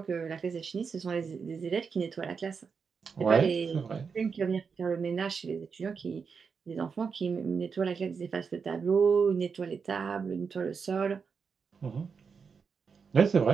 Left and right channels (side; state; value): left; quieter; 5.7 dB